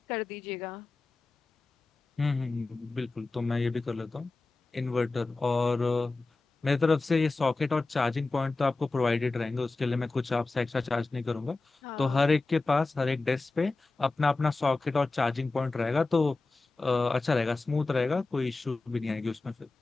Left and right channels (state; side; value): quieter; right; 3.5 dB